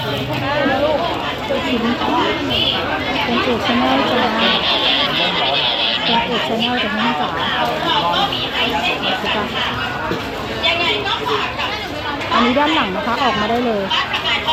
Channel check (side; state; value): both; identical; correlation 1.00